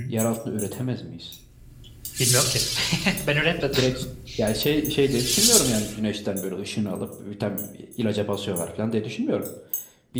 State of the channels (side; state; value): both; identical; correlation 1.00